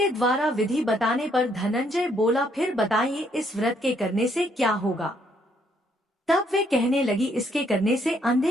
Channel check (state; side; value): normal; both; correlation 0.70